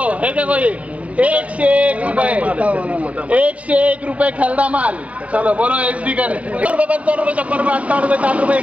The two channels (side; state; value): left; late; 0.066 ms